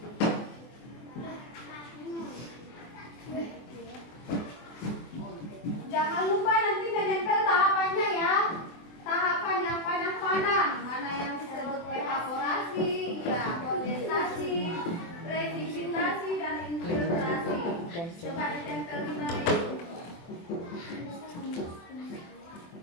Jangan lupa nanti menempel tahapannya ya. Tahapan yang panah-panah. Mana yang disebut evaporasi, ya, kondensasi, presipitasi, dan infiltrasi. Coba ditempel di mana itu.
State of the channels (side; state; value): right; late; 24 ms